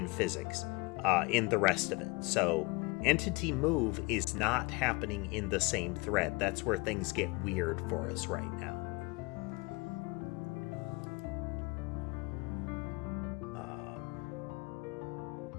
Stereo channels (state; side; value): quieter; right; 26.5 dB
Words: physics, in the rest of it. So entity move is not happening in the same thread. That's where things get weird for us right now.